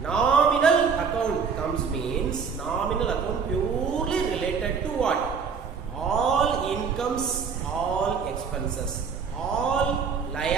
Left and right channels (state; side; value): quieter; left; 6.0 dB